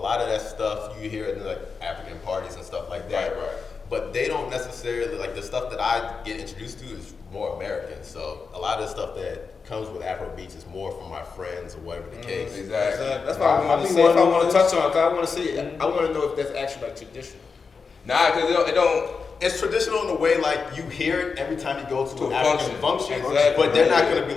of that stuff you hear in like African parties and stuff like that. Right. But they don't necessarily, like the stuff that I get introduced to is more American. So a lot of the stuff that comes with Afrobeats is more from my friends or whatever the case. Exactly. That's why I want to say, if I want to touch on it, because I want to see, I want to know if that's actually like traditional. Nah, because it don't. It's traditional in the way like you hear it every time you go to an African function, exactly. But they're not gonna be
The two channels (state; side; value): quieter; right; 5.1 dB